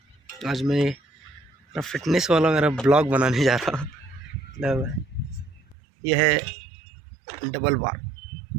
आज मैं फिटनेस वाला मेरा ब्लॉग बनाने जा रहा हूँ। मतलब यह है डबल बार,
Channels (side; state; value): left; drops out; at 5.8 s